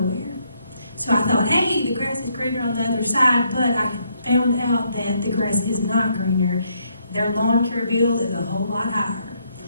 So I thought, hey, the grass is greener on the other side, but I found out that the grass is not greener. Their lawn care bill is a whole lot higher.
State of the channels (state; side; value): inverted; both; correlation -0.73